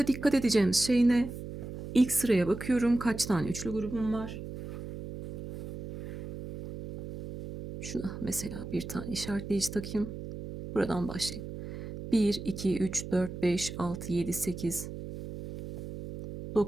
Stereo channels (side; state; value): right; noise; hum, 9 dB below the sound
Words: dikkat edeceğimiz şey ne? İlk sıraya bakıyorum. Kaç tane üçlü grubum var? Şuna mesela bir tane işaretleyici takayım. Buradan başlayayım. 1, 2, 3, 4, 5, 6, 7, 8,